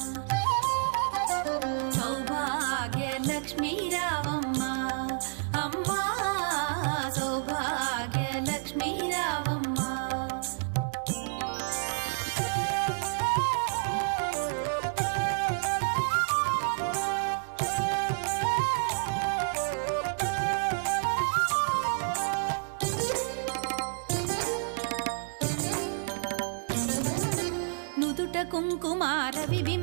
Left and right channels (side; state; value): left; silent; digital silence